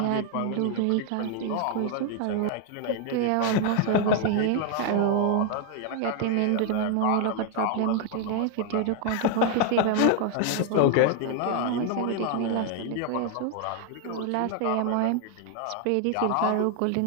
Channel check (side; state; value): both; different; correlation 0.00